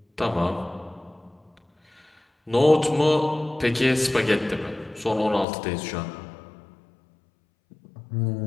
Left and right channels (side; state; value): right; drops out; at 5.5 s